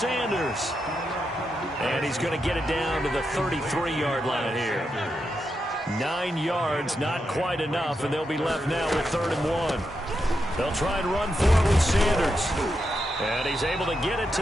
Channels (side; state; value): both; normal; correlation 0.85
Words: And he's going to get it down to the 33-yard line here. 9 yards, not quite enough, and they'll be left now with 3rd and 1. They'll try and run forward with Sanders. And he's able to get it